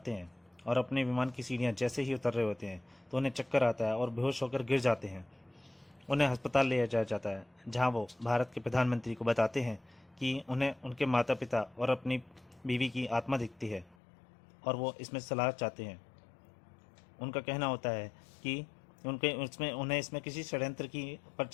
हैं और अपने विमान की सीढ़ियां जैसे ही उतर रहे होते हैं तो उन्हें चक्कर आता है और बेहोश होकर गिर जाते हैं। उन्हें अस्पताल ले जाया जाता है, जहां वो भारत के प्रधानमंत्री को बताते हैं कि उन्हें उनके माता पिता और अपनी बीवी की आत्मा दिखती है और वो इसमें सलाह चाहते हैं। उनका कहना होता है कि उन्हें इसमें किसी षड्यंत्र की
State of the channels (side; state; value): right; drops out; at 14.0 s